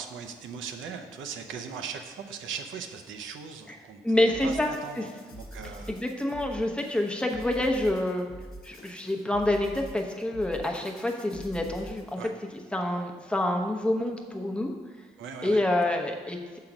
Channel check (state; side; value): normal; both; correlation 0.84